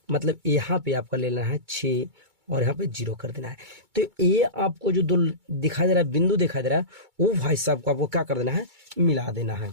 मतलब यहाँ पे आपका लेना है 6 और यहाँ पे 0 कर देना है। तो ये आपको जो 2 दिखाई दे रहा है, बिंदु दिखाई दे रहा है, वो भाई साहब को आपको क्या कर देना है, मिला देना है,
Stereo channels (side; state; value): left; late; 2.3 ms